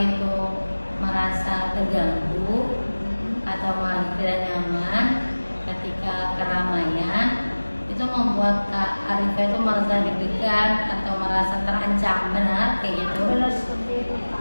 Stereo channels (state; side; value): inverted; both; correlation -1.00